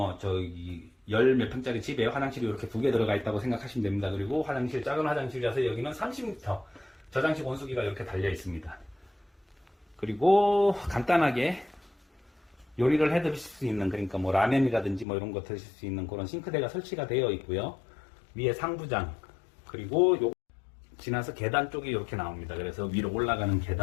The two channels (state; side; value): drops out; right; at 15.1 s